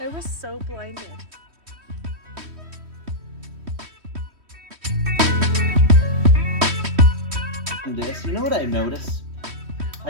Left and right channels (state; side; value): late; left; 3.1 ms